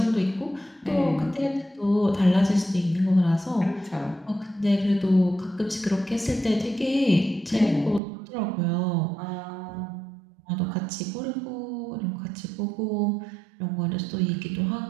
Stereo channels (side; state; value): left; drops out; at 8.0 s